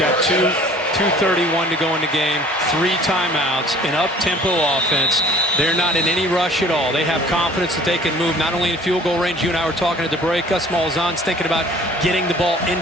2:31 to go in the game, 3 timeouts, an up-tempo offense. They're not in any rush at all. They have confidence that they can move not only in field goal range. You and I were talking at the break. Gus Malzahn's thinking about getting the ball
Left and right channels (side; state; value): both; normal; correlation 0.50